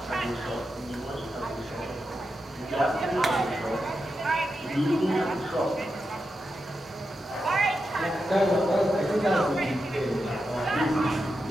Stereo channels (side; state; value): both; normal; correlation 0.87